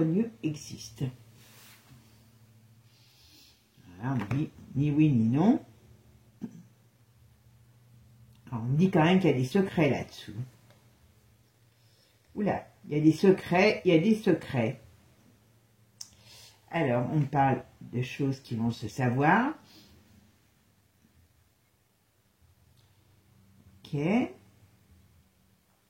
existe? Voilà, on dit ni oui ni non. Alors, on me dit quand même qu'il y a des secrets là-dessous. Oula, il y a des secrets, il y a des secrets. Alors, on parle de choses qui vont se savoir. Ok. Ben,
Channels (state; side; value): identical; both; correlation 1.00